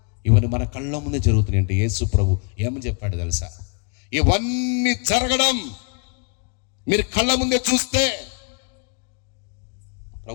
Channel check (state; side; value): quieter; right; 36.8 dB